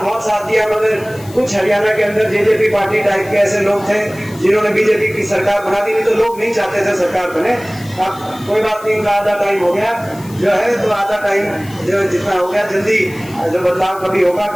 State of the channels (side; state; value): left; noise; hiss, 21 dB below the sound